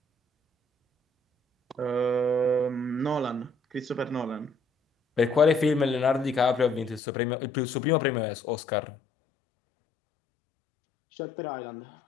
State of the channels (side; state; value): right; drops out; at 7.0 s